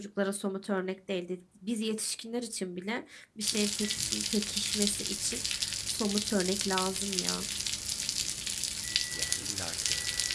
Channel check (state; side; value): identical; both; correlation 1.00